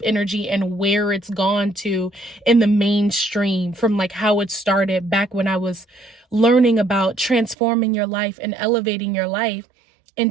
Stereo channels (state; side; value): drops out; left; at 7.6 s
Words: energy and where it's gone to in the mainstream from like how it started back when I was learning about transforming your life and elevating your life